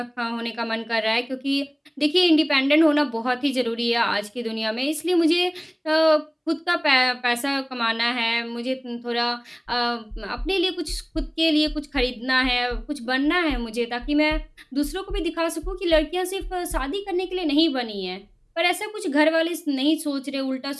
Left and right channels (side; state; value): both; identical; correlation 1.00